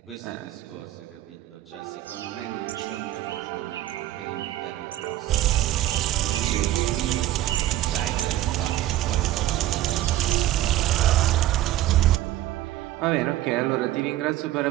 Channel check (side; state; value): left; quieter; 14.2 dB